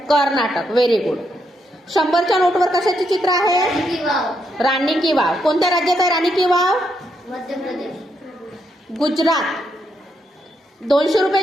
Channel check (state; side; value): normal; both; correlation 0.79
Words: कर्नाटक. Very good. 100च्या नोटवर कशाचे चित्र आहे? राणी वाव. राणी की वाव. कोणत्या राज्यात आहे राणी की वाव? मध्य प्रदेश. गुजरात. 200